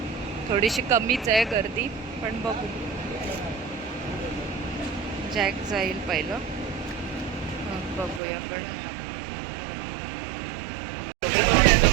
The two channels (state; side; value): drops out; left; at 8.2 s